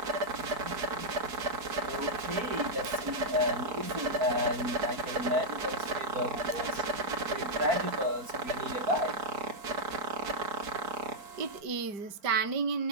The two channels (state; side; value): late; left; 4.7 ms